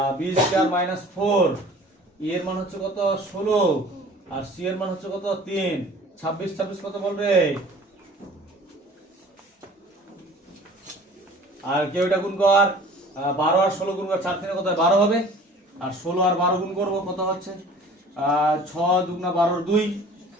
বি স্কয়ার মাইনাস 4 এর মান হচ্ছে কত 16 আর সি এর মান হচ্ছে কত 3, 26 কত বল রে, আর কেউ এটা গুণ কর 12 আর 16 গুণ কর 4 3 কত 12 হবে, আর 16 আর 12 গুণ করব কত হচ্ছে 6 দুগুণা 12 2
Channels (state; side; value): normal; both; correlation 0.47